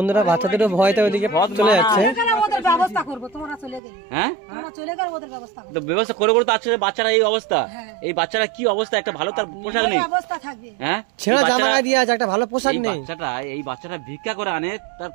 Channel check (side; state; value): left; drops out; at 3.8 s